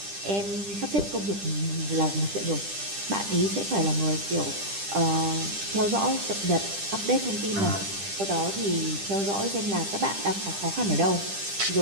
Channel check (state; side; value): late; left; 10 ms